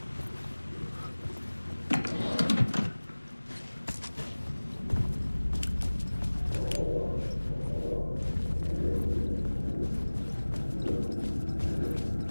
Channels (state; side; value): inverted; both; correlation -1.00